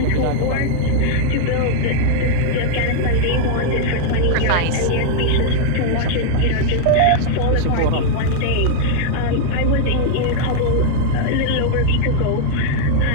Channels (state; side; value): different; both; correlation 0.00